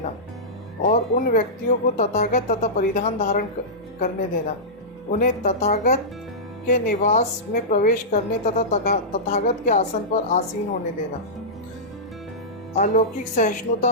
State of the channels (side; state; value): both; normal; correlation -0.15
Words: और उन व्यक्तियों को तथागत तथा परिधान धारण करने देना। उन्हें तथागत के निवास में प्रवेश करने तथा तथागत के आसन पर आसीन होने देना। अलौकिक सहिष्णुता